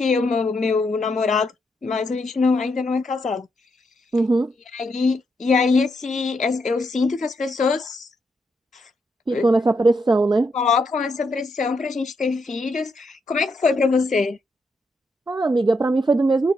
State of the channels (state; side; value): normal; both; correlation 0.79